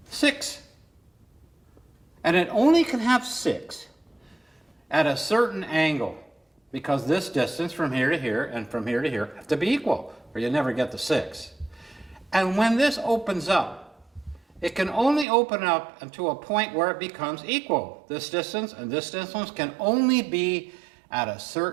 6. And it only can have 6 at a certain angle, because this distance from here to here and from here to here have to be equal, or you never get the 6. And when this opens up, it can only open up until a point where it becomes equal. This distance and this distance can only be at a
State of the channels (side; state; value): left; drops out; at 15.2 s